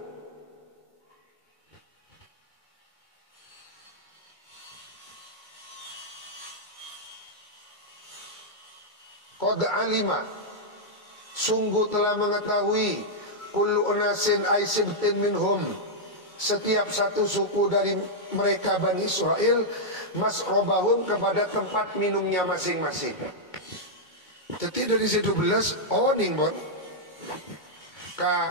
Qad alima, sungguh telah mengetahui, kullu unasin ay sibtin minhum, setiap satu suku dari mereka Bani Israel, masrobahum, kepada tempat minumnya masing-masing. Jadi dari 12 oning bon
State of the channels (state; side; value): late; right; 2.2 ms